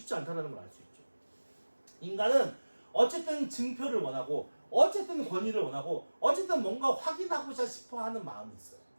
않다는 걸 알 수 있죠. 인간은 어쨌든 증표를 원하고 어쨌든 권위를 원하고 어쨌든 뭔가 확인하고자 싶어하는 마음이 있어요.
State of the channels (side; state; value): both; inverted; correlation -1.00